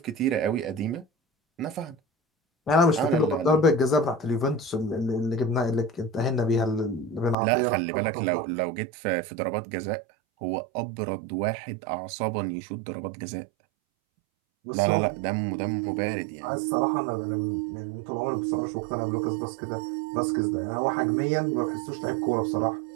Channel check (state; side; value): drops out; left; at 7.4 s